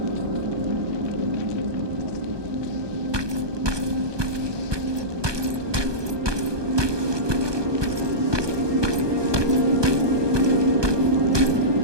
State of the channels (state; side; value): late; left; 1.2 ms